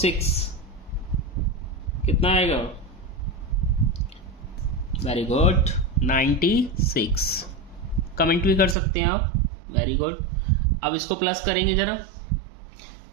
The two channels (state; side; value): drops out; left; at 8.8 s